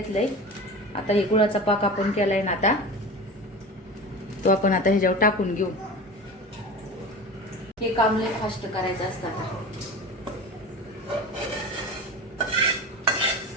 आता हे गुळाचा पाक आपण केलाय ना, आता तो आपण आता ह्याच्यावर टाकून घेऊ. हे काम लय फास्ट करायचं असतं.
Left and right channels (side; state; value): both; normal; correlation 0.32